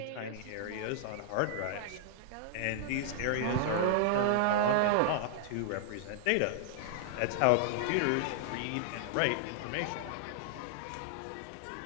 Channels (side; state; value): both; different; correlation -0.01